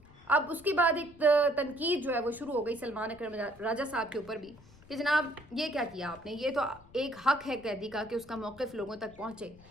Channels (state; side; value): noise; left; rumble, 24 dB below the sound